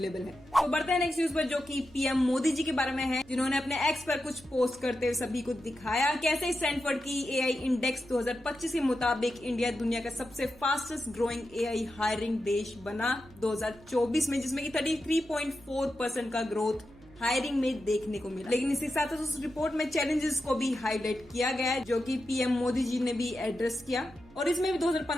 है। तो बढ़ते हैं नेक्स्ट न्यूज पर जो कि पीएम मोदी जी के बारे में है, जिन्होंने अपने एक्स पर कुछ पोस्ट करते हुए सभी को दिखाया कैसे स्टैनफोर्ड की एआई इंडेक्स 2025 के मुताबिक इंडिया दुनिया का सबसे फास्टेस्ट ग्रोइंग एआई हायरिंग देश बना 2024 में, जिसमें कि 33.4% का ग्रोथ हायरिंग में देखने को मिला। लेकिन इसी साथ उस रिपोर्ट में चैलेंजेस को भी हाईलाइट किया गया है जो कि पीएम मोदी जी ने भी एड्रेस किया। और इसमें भी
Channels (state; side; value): noise; right; hum, 24 dB below the sound